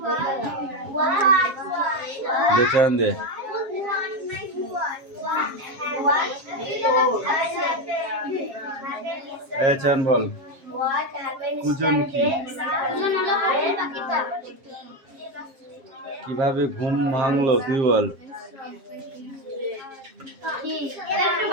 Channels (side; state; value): left; late; 7.4 ms